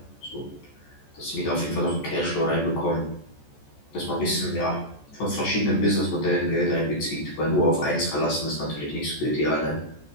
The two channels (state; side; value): late; right; 14 ms